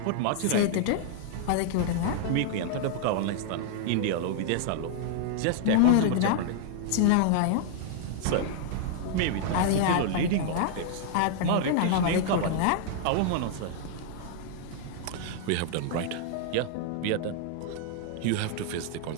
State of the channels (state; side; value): different; both; correlation -0.01